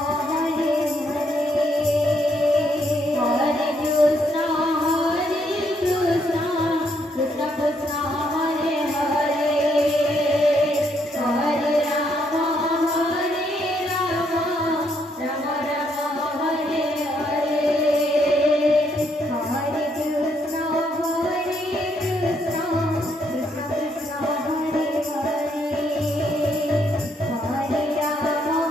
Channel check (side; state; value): both; normal; correlation 0.73